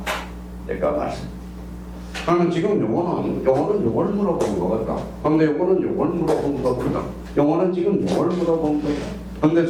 직접 말소. 그러면 지금 요거는 요걸 물어본 거거든. 근데 요거는 요걸 물어본 거거든. 요거는 지금 요걸 물어본 거야. 근데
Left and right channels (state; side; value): identical; both; correlation 1.00